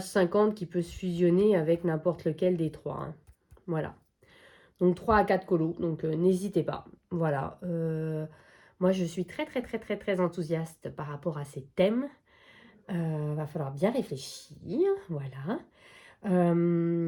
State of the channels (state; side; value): identical; both; correlation 1.00